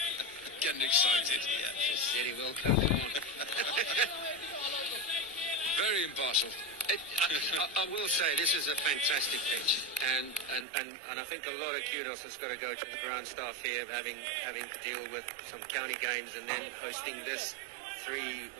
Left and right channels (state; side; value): drops out; left; at 10.7 s